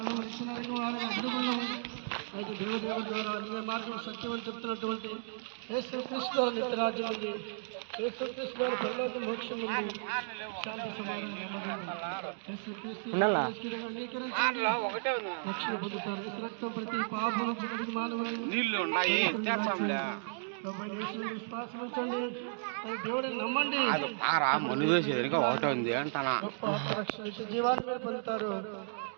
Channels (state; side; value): silent; left; digital silence